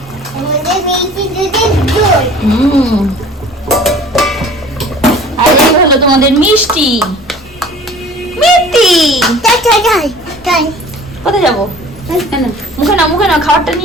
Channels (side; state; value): both; normal; correlation 0.46